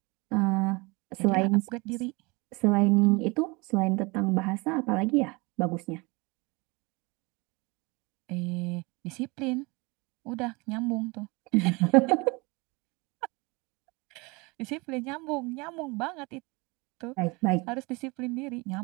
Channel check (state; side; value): quieter; left; 26.4 dB